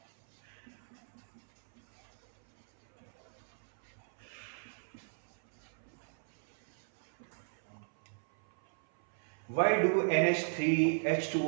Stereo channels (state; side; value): silent; left; 53 dB below the other